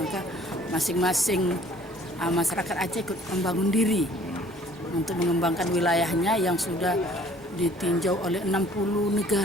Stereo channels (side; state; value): both; normal; correlation 0.55